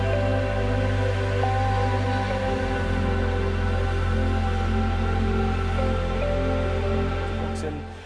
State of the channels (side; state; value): both; identical; correlation 1.00